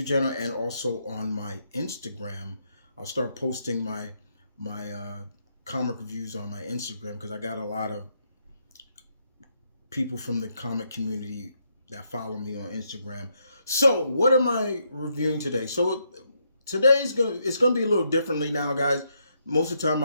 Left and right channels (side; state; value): both; inverted; correlation -0.77